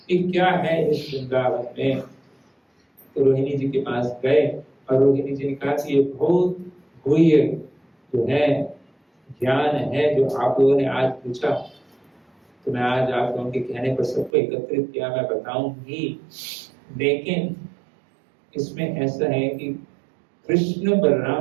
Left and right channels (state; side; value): drops out; left; at 14.3 s